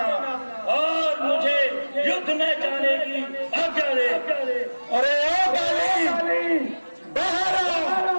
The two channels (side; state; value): both; inverted; correlation -1.00